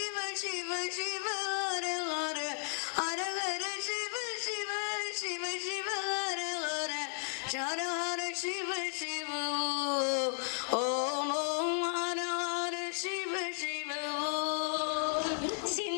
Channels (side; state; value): right; silent; 55 dB below the other